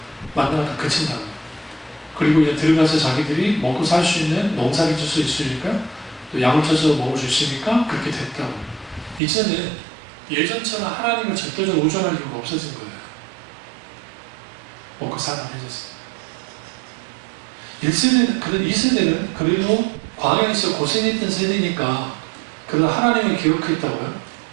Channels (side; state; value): left; drops out; at 9.2 s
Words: 만나가 다 그친다고. 그리고 이제 들어가서 자기들이 먹고 살 수 있는 농사를 줄 수 있으니까 또 양을 쳐서 먹을 수 있으니까 그렇게 됐다고. 이제는 예전처럼 하나님을 절대적으로 의존할 이유가 없어진 거예요. 먹고 살아 해졌어요. 1세대, 2세대는 그래도 광야에서 고생했던 세대니까 그래도 하나님을 기억했다고요.